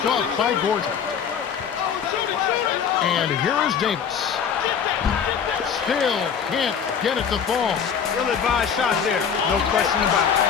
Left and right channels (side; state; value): right; quieter; 7.3 dB